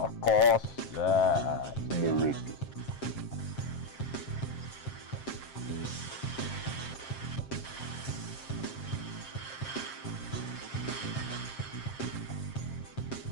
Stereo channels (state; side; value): late; right; 7.5 ms